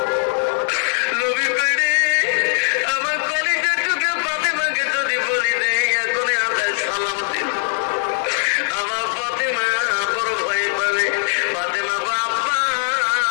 নবী কইরে আমার কলিজা টুকে ফাতেমাকে যদি বলি দেয় এখনই আমরা সালাম দিন। আমার ফাতেমা বড় ভয়ে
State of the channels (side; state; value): right; silent; 66 dB below the other